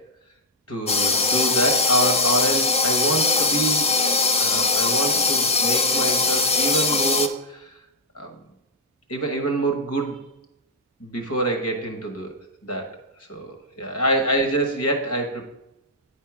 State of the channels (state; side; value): normal; both; correlation -0.05